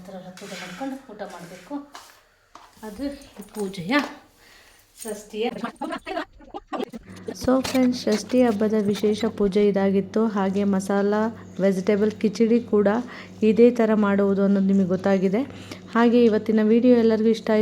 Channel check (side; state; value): both; identical; correlation 1.00